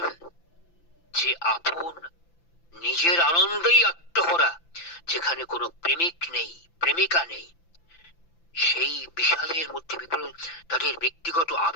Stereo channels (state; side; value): late; right; 5.9 ms